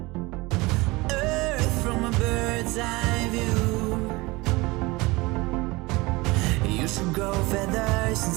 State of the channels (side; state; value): left; quieter; 22.8 dB